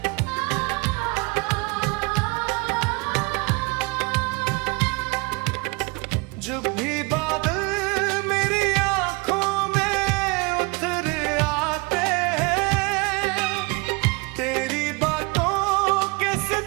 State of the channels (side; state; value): left; quieter; 27.6 dB